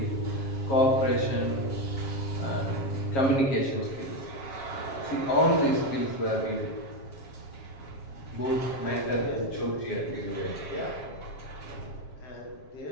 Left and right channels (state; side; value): late; right; 7.4 ms